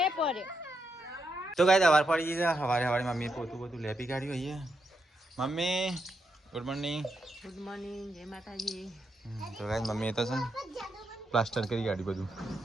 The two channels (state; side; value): normal; both; correlation 0.82